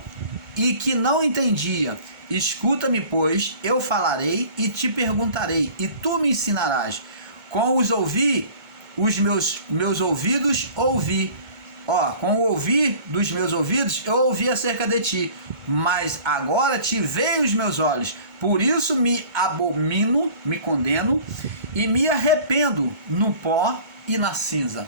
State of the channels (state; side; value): late; left; 2.2 ms